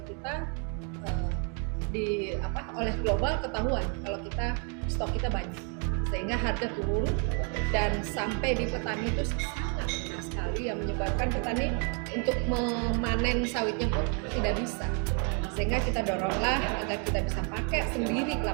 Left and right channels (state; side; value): quieter; left; 38.6 dB